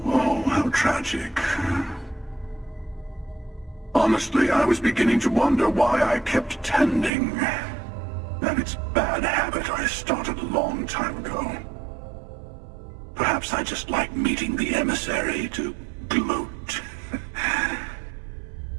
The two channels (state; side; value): drops out; left; at 7.1 s